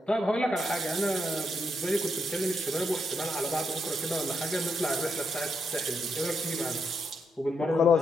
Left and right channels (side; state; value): both; normal; correlation 0.80